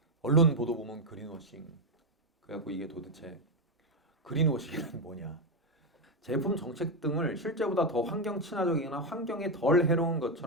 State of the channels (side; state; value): both; normal; correlation 0.07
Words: 언론 보도 보면 그린워싱. 그래갖고 이게 도대체 그린워싱은 뭐냐? 제품 정책 등을 실제보다 더 환경 친화적이거나 환경에 덜 해로운